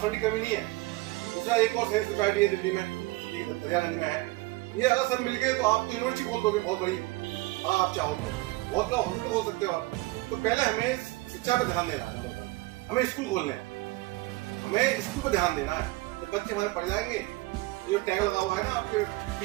फंड की कमी नहीं है। दूसरा एक और सैनिक सोसाइटी है दिल्ली में, दरियागंज में है, ये अगर सब मिल गए तो आप तो यूनिवर्सिटी खोल दोगे बहुत बड़ी, हाँ आप चाहो तो बहुत बड़ा हॉस्पिटल खोल सकते हो आप। तो पहले हमें शिक्षा पे ध्यान देना है, हमें स्कूल खोलने हैं, हमें स्कूल पे ध्यान देना है। जब बच्चे हमारे पढ़ जाएंगे, जो टैग लगा हुआ है ना आपके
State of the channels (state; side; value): quieter; left; 21.2 dB